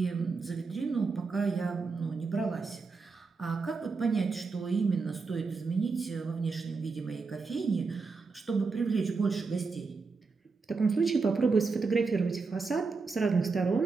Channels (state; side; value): quieter; left; 4.5 dB